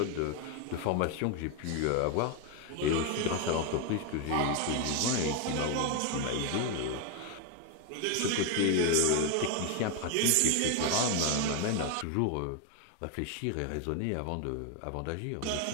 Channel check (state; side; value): different; both; correlation 0.01